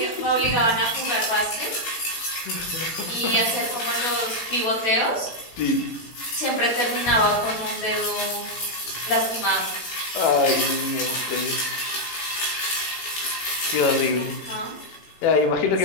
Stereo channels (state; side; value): late; right; 17 ms